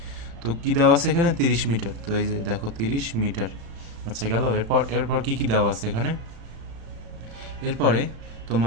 তো কী দেওয়া আছে এখানে? 30 মিটার। তো এই যে দেখো 30 মিটার। আচ্ছা গেল। এরপর কি দেওয়া আছে এখানে? এরপরে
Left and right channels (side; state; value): left; late; 35 ms